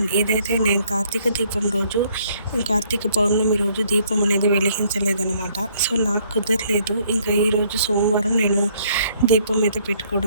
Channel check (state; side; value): inverted; both; correlation -0.65